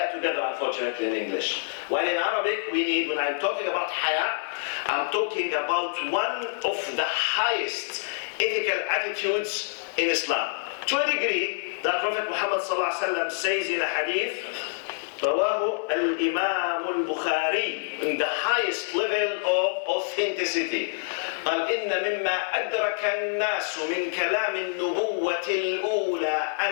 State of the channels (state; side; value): silent; right; digital silence